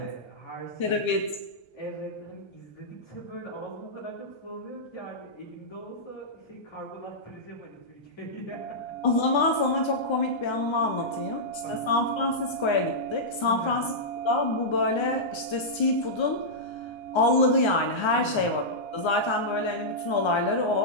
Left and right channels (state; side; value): late; right; 1.3 ms